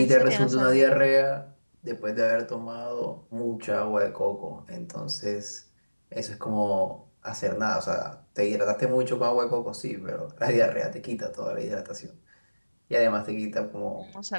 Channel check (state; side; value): inverted; both; correlation -1.00